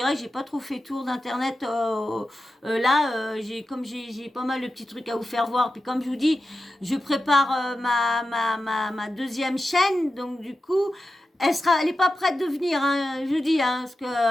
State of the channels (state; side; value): normal; both; correlation 0.92